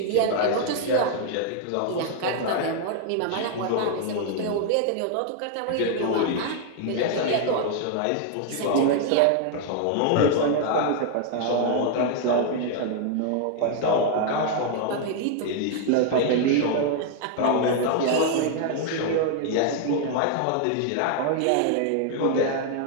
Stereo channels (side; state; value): both; different; correlation 0.00